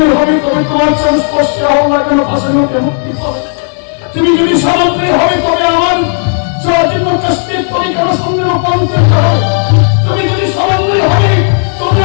হবে তবে তোমার সংস্পর্শে হও না কেন ভাষণ হতে মুক্তি পাবে। তুমি যদি সামান্য হবে তবে আমার জন্য কষ্টের তবে কেন সঙ্গে রূপান্তরিত হবে। তুমি যদি সামান্য হবে তবে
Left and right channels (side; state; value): right; silent; 66 dB below the other